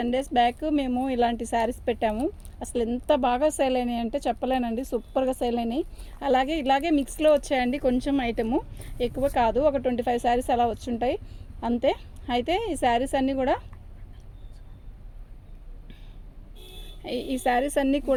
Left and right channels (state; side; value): identical; both; correlation 1.00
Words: days బ్యాక్ మేము ఇలాంటి శారీస్ పెట్టాము. అసలు ఎంత బాగా సేల్ అయినాయి అంటే చెప్పలేనండి, సూపర్గా సేల్ అయినాయి. ఇలాగే మిక్స్లో వచ్చాయండి, కొంచెం ఐటము ఎక్కువ కాదు, ఒక 25 శారీస్ అలా వచ్చుంటాయి అంతే. అయితే ఈ శారీస్ అన్నీ